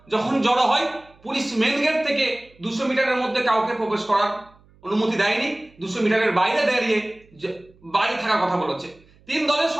যখন জড়ো হয়, পুলিশ মেন গেট থেকে 200 মিটারের মধ্যে কাউকে প্রবেশ করার অনুমতি দেয়নি, 200 মিটারের বাইরে দাঁড়িয়ে বাইরে থাকার কথা বলেছে। তিন দলের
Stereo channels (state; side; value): noise; right; hum, 29 dB below the sound